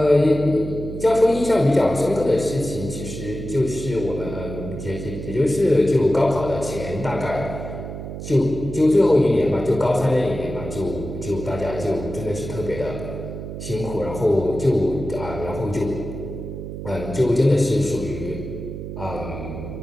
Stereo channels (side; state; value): right; noise; hum, 8 dB below the sound